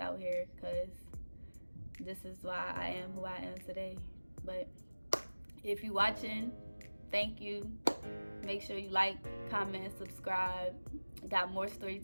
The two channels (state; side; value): inverted; both; correlation -1.00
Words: out here because this is why I am who I am today. But if you watching, thank you. Make sure you like, comment, subscribe. Got more story